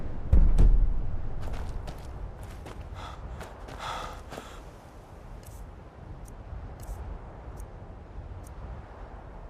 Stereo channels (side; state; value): both; identical; correlation 1.00